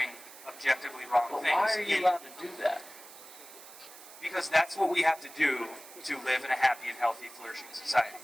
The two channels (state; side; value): noise; right; hiss, 17 dB below the sound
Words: objectively wrong things. Why are you allowed to do that? Because that's what we have to do to live in a happy and healthy, flourishing society.